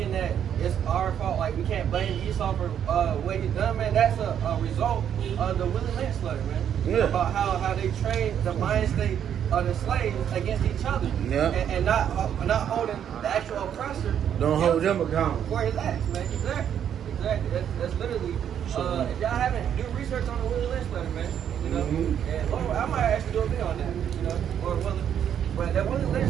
that it's our fault, like we can't blame Esau for what he done, man. That's a result of the Willie Lynch letter, man. Yeah. About how they trained the mind state of the slaves against each other, Yeah. and not holding the actual oppressor. Don't hold them accountable. for his acts, man. Exactly. That's literally. If y'all haven't do research on the Willie Lynch letter, man, you know, and I might actually do a video on that, you know, or whether. But that Willie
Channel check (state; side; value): quieter; left; 9.2 dB